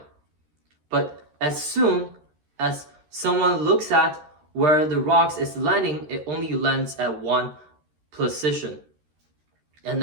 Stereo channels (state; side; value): late; left; 13 ms